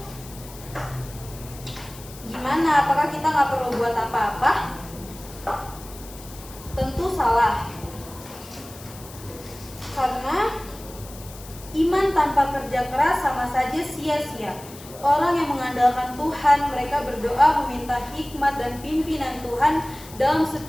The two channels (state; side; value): noise; left; hiss, 18 dB below the sound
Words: gimana? Apakah kita nggak perlu buat apa-apa? Tentu salah. Karena iman tanpa kerja keras sama saja sia-sia. Orang yang mengandalkan Tuhan, mereka berdoa meminta hikmat dan pimpinan Tuhan dalam